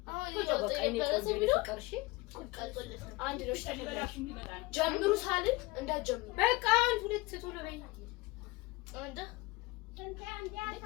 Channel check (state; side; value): quieter; right; 22.1 dB